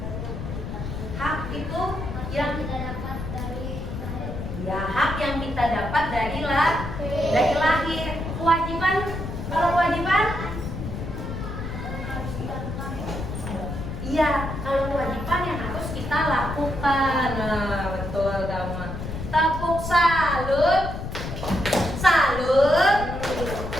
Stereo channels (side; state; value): left; noise; rumble, 6 dB below the sound